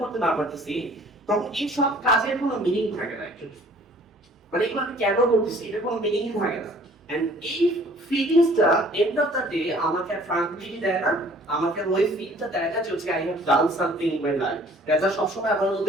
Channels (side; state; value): both; normal; correlation 0.54